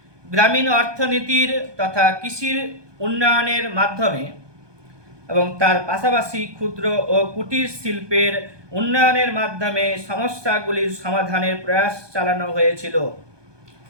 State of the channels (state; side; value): late; left; 1.2 ms